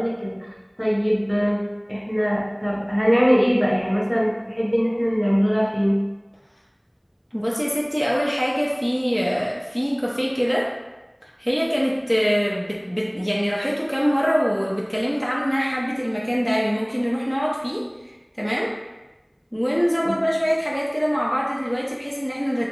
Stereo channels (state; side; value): identical; both; correlation 1.00